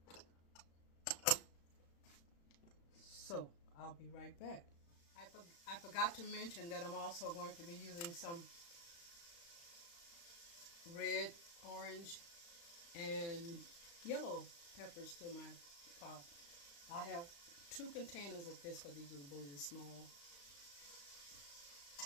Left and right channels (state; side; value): late; right; 35 ms